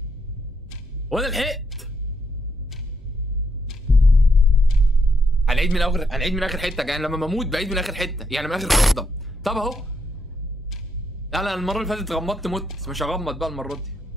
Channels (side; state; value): both; normal; correlation 0.77